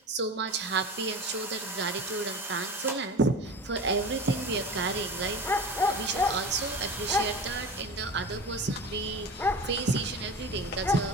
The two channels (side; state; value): both; normal; correlation 0.32